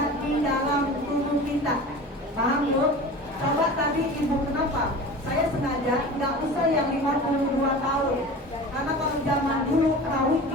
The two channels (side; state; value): both; normal; correlation 0.36